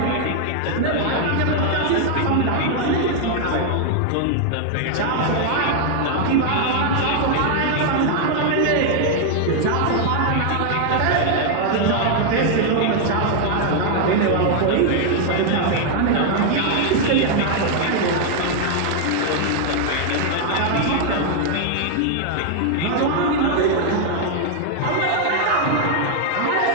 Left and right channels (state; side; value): different; both; correlation 0.00